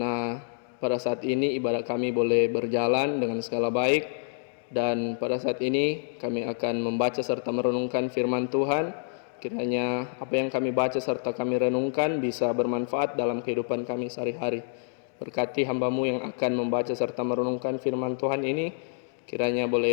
pada saat ini ibadah kami boleh berjalan dengan segala baik, dan pada saat ini kami akan membaca serta merenungkan firman Tuhan. Kiranya apa yang kami baca serta kami renungkan bisa bermanfaat dalam kehidupan kami sehari-hari. Berkati hamba-Mu yang akan membaca serta merenungkan firman Tuhan ini, kiranya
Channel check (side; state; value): right; silent; digital silence